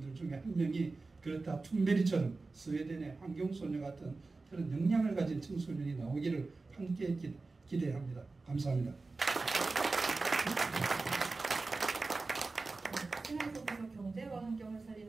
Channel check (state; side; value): quieter; left; 3.7 dB